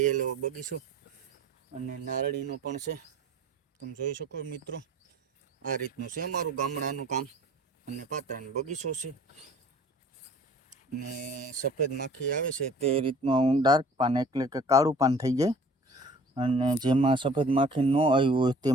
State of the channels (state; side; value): normal; both; correlation 0.49